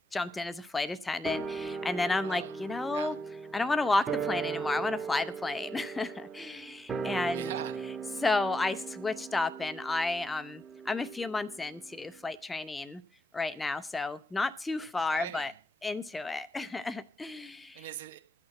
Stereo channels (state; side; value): normal; both; correlation 0.85